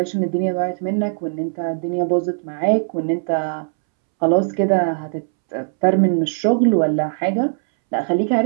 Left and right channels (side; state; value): left; silent; 66 dB below the other